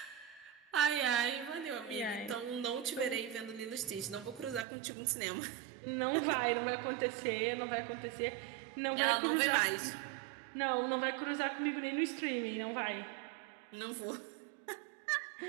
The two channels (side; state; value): left; drops out; at 4.7 s